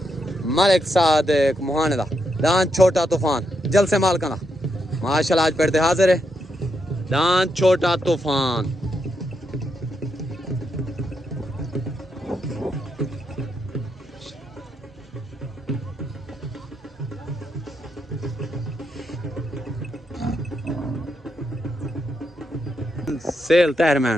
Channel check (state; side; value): normal; both; correlation 0.81